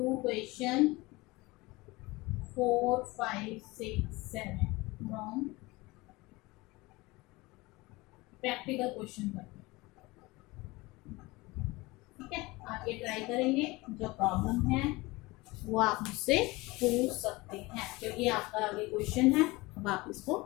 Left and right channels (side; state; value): right; quieter; 22.2 dB